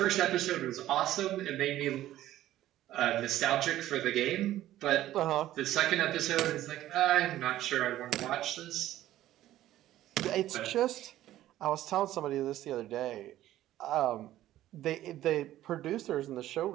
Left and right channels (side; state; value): left; quieter; 13.8 dB